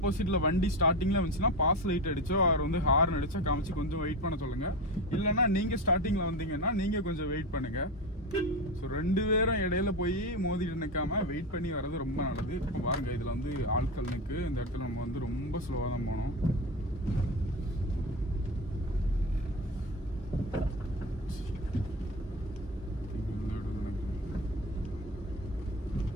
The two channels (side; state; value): both; normal; correlation 0.22